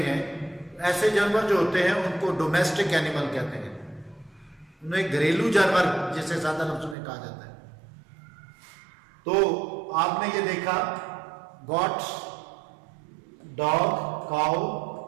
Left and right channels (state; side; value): drops out; left; at 7.0 s